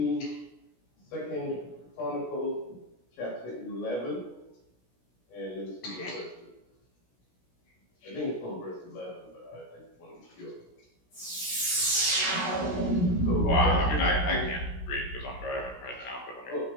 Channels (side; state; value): right; late; 17 ms